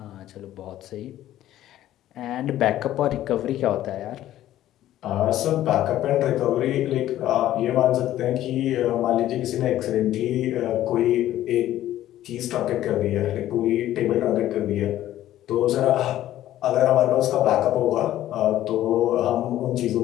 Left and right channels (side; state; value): right; quieter; 13.3 dB